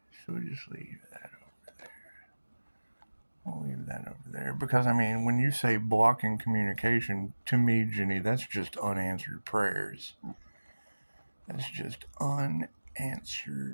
So we'll just leave that over there. We'll leave that over there, because I mean, when you say blocking communication, to me, Jenny, that's just unanswered prayers. That's just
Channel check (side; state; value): both; inverted; correlation -1.00